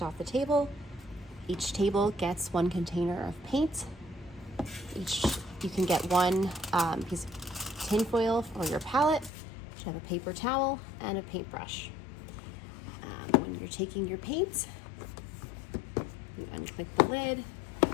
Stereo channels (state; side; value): drops out; right; at 9.3 s